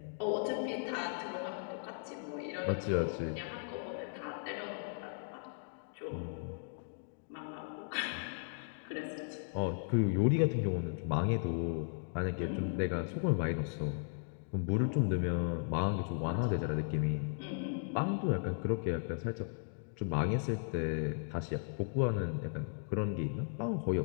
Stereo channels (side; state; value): right; silent; digital silence